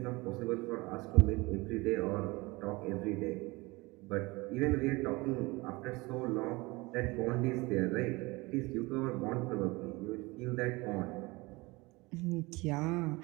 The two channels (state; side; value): quieter; left; 23.5 dB